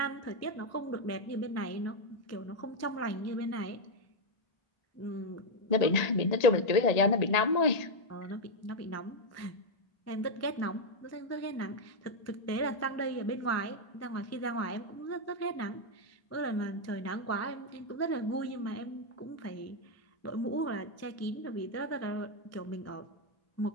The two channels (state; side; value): late; right; 1.8 ms